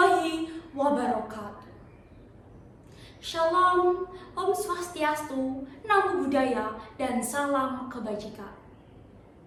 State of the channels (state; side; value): identical; both; correlation 1.00